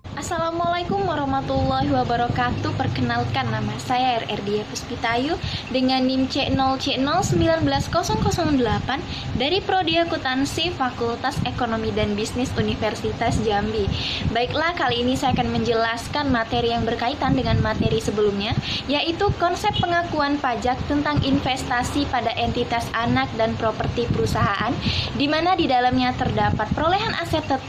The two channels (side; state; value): both; identical; correlation 1.00